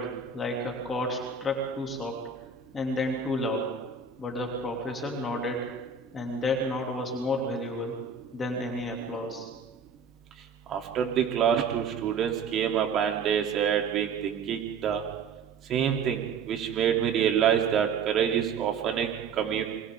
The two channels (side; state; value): left; quieter; 5.3 dB